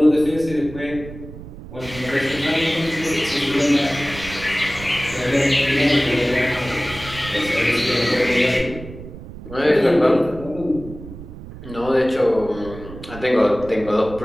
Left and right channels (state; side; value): noise; right; rumble, 14 dB below the sound